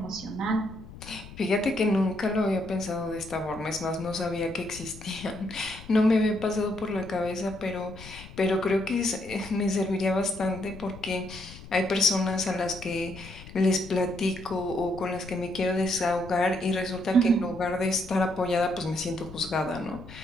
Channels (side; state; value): left; noise; rumble, 16 dB below the sound